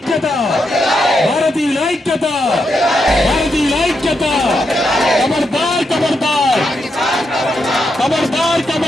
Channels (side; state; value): both; normal; correlation 0.82